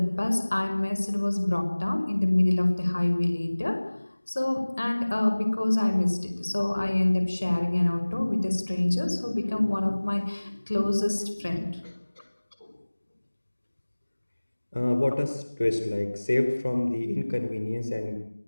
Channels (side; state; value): both; inverted; correlation -1.00